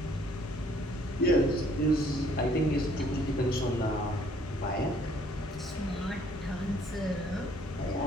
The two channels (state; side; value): normal; both; correlation 0.62